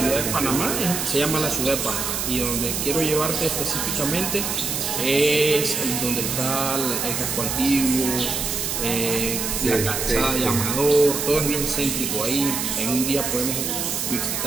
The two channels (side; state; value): right; noise; hiss, 2 dB below the sound